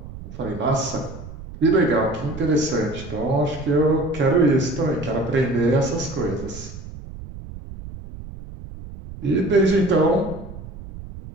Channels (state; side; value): noise; right; rumble, 13 dB below the sound